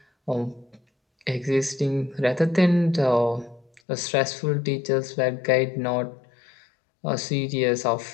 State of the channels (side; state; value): right; drops out; at 3.8 s